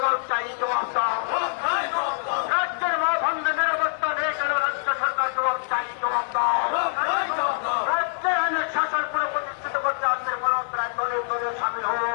চাই, জবাব দাও। রাজ্যের মা বন্ধে নিরাপত্তা নেই কেন রাজ্য সরকার জবাব চাই, জবাব দাও। রাজ্যের আইনের শাসন পুরো প্রতিষ্ঠিত করতে আজকে পুরোদরায় দলে দলে সামিল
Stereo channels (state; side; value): silent; right; 62 dB below the other